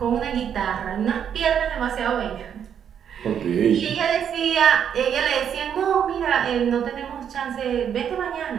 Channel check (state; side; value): quieter; left; 8.5 dB